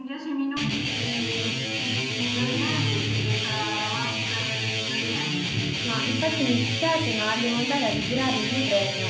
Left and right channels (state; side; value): identical; both; correlation 1.00